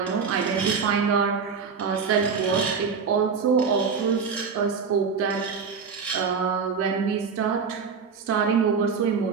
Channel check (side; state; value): left; quieter; 5.7 dB